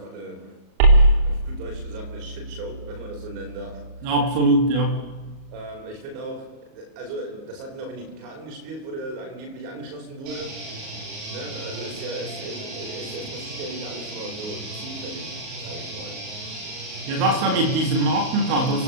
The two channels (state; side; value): late; left; 38 ms